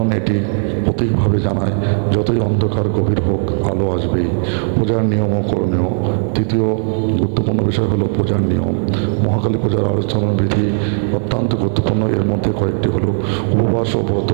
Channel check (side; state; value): left; silent; 57 dB below the other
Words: এটি প্রতীকভাবে জানায় যতই অন্ধকার গভীর হোক, আলো আসবেই। পূজার নিয়ম ও করণীয়। তৃতীয় গুরুত্বপূর্ণ বিষয় হলো পূজার নিয়ম। মহাকালী পূজার আলোচনা বিধি অত্যন্ত গুরুত্বপূর্ণ। এর মধ্যে কয়েকটি হলো উপবাস ও ব্রত।